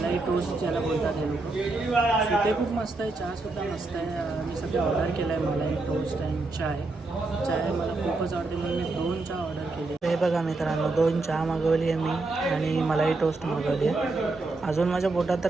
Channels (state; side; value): quieter; left; 3.3 dB